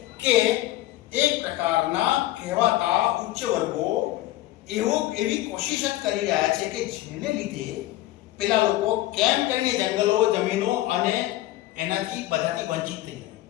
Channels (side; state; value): right; quieter; 16.3 dB